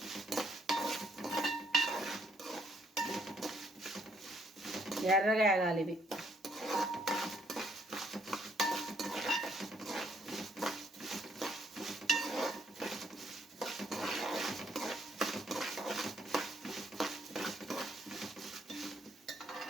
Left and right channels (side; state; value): both; normal; correlation 0.69